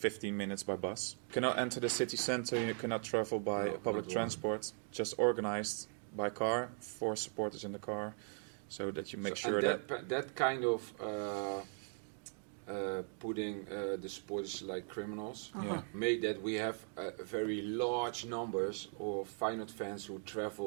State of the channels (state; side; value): silent; left; 52 dB below the other